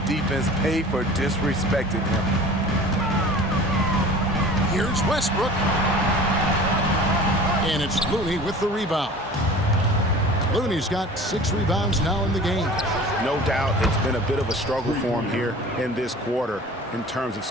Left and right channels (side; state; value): both; normal; correlation 0.42